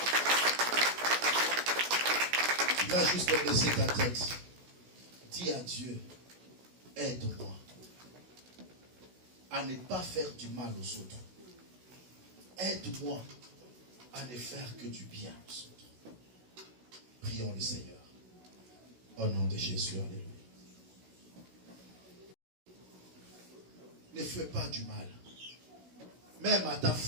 Tu vas juste baisser ta tête. Dis à Dieu, aide-moi à ne pas faire du mal aux autres. Aide-moi à ne faire que du bien aux autres. Prions le Seigneur. Au nom de Jésus, alléluia. Ne fais pas du mal. Même à ta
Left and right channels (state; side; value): late; left; 16 ms